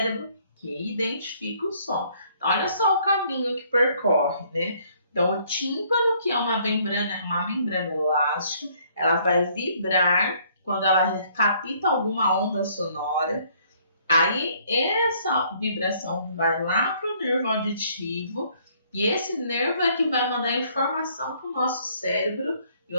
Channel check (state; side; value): inverted; both; correlation -0.63